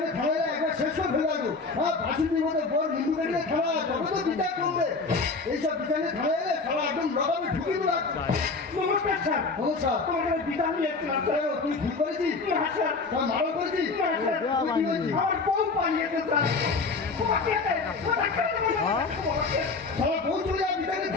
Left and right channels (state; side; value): quieter; right; 4.1 dB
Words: থানায় একবার শেষ করে ফেলে আসবো। বাসুদের মধ্যে বড় হিন্দু বেরিয়ে থানা তবে তো বিচার করবে। এইসব বিচারে থানায় এলে সারা একদম লগাবে ঢুকিয়ে দেবো। নমস্কার স্যার। নমস্কার। তোমার বিচার নিয়ে এসেছিলাম স্যার। তুই ভুল করেছিস? হ্যাঁ স্যার। মারা করেছিস? হ্যাঁ স্যার। কি বলছিস? আমার বউ পালিয়েছে স্যার। সারা বউ চলে যাবে বিচারে